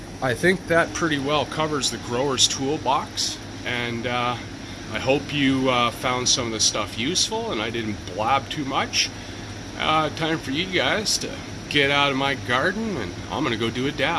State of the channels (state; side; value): identical; both; correlation 1.00